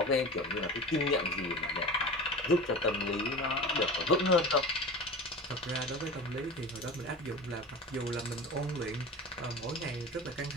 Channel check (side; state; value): both; normal; correlation 0.32